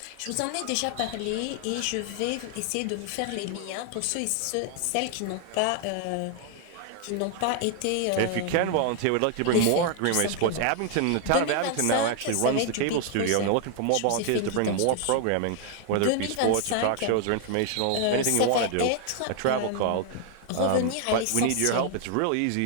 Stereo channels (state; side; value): different; both; correlation 0.00